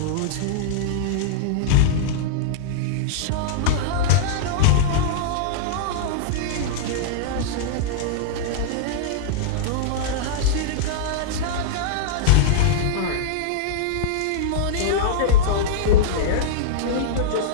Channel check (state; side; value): different; both; correlation -0.02